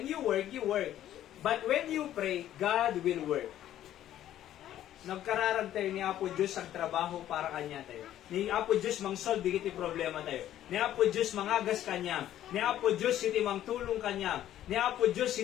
you work, you work. But when you pray, God will work. Nagkararag tayo ni Apo Diyos ang trabaho para kanya tayo. Ni Apo Diyos mang-solve digiti problema tayo. Ni Apo Diyos mangagas kanya. Ni Apo Diyos iti mang tulong kanya. Ni Apo Diyos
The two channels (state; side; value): quieter; right; 12.2 dB